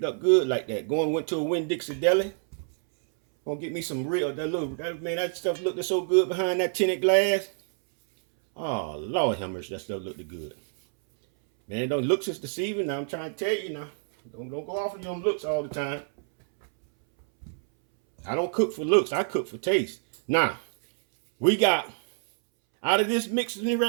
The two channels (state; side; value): silent; left; 60 dB below the other